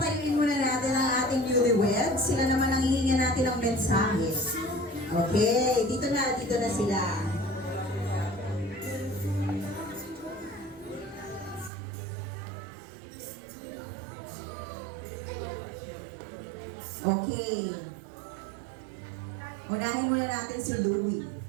muna natin ang ating newlyweds. Sila naman ang hihingan natin ng mensahe. Okay, dito na sila. Okay. Unahin muna natin si Louie.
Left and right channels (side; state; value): left; drops out; at 11.7 s